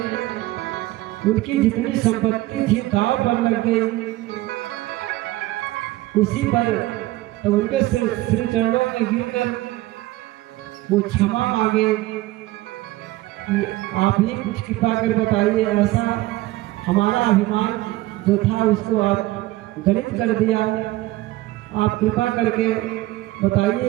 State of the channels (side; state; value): left; quieter; 17.7 dB